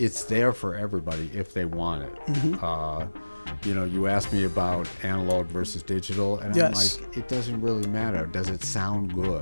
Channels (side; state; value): both; inverted; correlation -1.00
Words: there for everybody if they want it. Mm-hmm. You asked me about analog versus digital, and yes. I'm like, it doesn't really matter. Does it sound